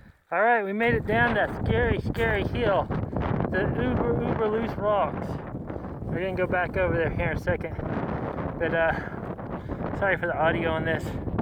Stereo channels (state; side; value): identical; both; correlation 1.00